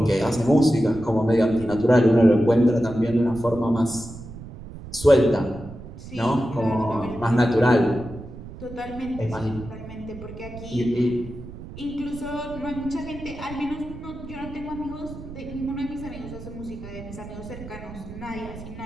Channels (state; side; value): noise; right; rumble, 13 dB below the sound